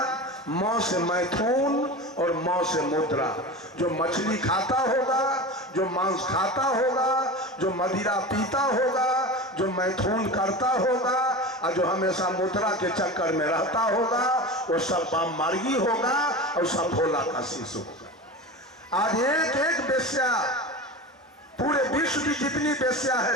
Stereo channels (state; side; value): normal; both; correlation 0.29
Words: मौ से मैथुन और मौ से मुद्रा। जो मछली खाता होगा, जो मांस खाता होगा, जो मदिरा पीता होगा, जो मैथुन करता होगा, और जो हमेशा मुद्रा के चक्कर में रहता होगा, वो सब वाम मार्गी होगा और सब भोला का शिष्य होगा। आज एक एक वेश्या, पूरे विश्व की जितनी वेश्या है